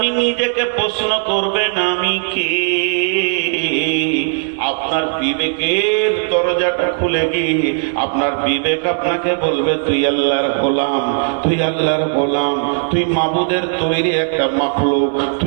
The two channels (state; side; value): silent; left; digital silence